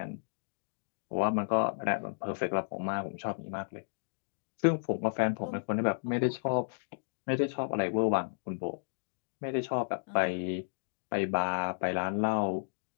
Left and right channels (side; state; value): right; silent; digital silence